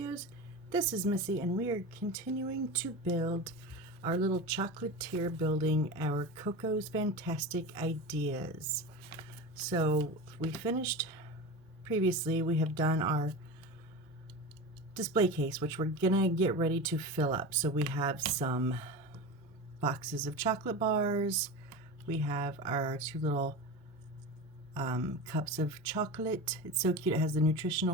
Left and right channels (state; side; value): normal; both; correlation 0.27